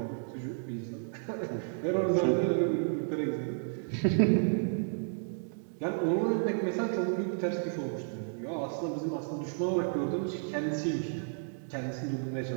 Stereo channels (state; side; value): silent; left; digital silence